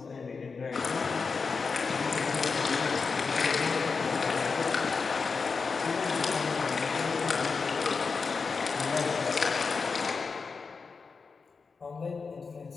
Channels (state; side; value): quieter; right; 4.9 dB